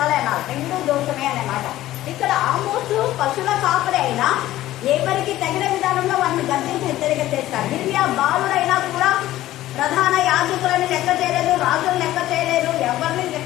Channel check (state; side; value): quieter; right; 14.8 dB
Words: అనాలి. రెండూ దోషమే అన్నమాట. ఇక్కడ ఆమోసు పశువుల కాపరి అయినా ఎవరికి తగిన విధానంలో వాళ్ళని గర్జించి హెచ్చరిక చేస్తారు. గిర్మియా బాలుడైనా కూడా ప్రధాన యాజకులని లెక్క చేయలేదు, రాజులను లెక్క చేయలేదు, ఎవరిని